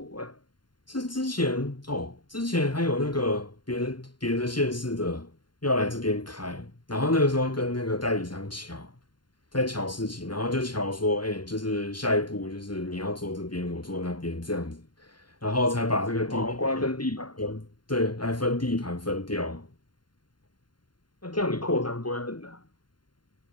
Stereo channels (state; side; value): late; right; 0.72 ms